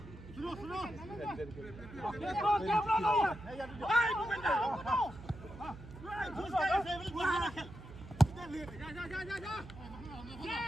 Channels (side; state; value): right; noise; hum, 15 dB below the sound